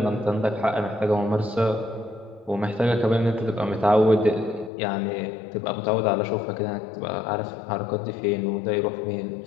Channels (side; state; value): right; drops out; at 4.7 s